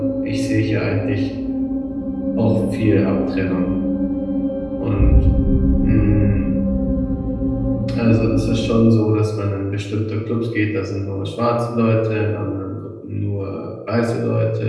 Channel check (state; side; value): identical; both; correlation 1.00